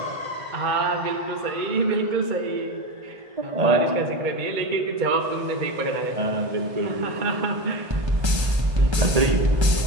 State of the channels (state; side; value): late; left; 1.3 ms